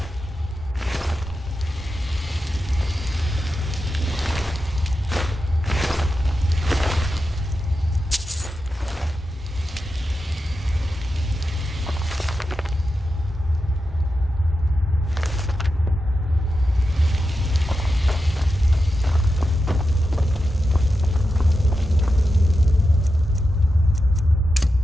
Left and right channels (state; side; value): normal; both; correlation 0.90